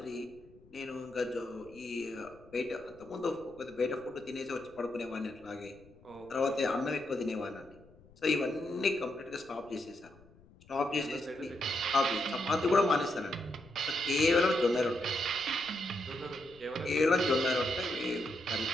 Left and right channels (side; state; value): left; noise; rumble, 25 dB below the sound